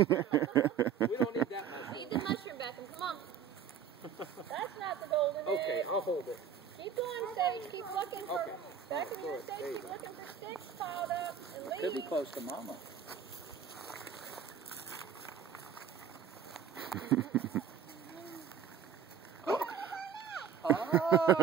We don't need that much. Eat the mushroom, Beckham. Come on. That's not the golden egg. Okay, I'll hold it. Keep going, Sage. Keep looking for Okay. Beckham, Throw you're it. safe. There you Keep go. looking for sticks piled up and leaves. Could be close to Mama.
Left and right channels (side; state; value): left; quieter; 7.7 dB